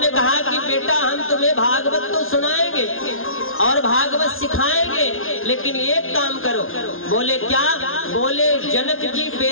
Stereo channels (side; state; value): right; late; 0.60 ms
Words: कहा कि बेटा, हम तुम्हें भागवत तो सुनाएंगे और भागवत सिखाएंगे, लेकिन एक काम करो। बोले क्या? बोले जनक जी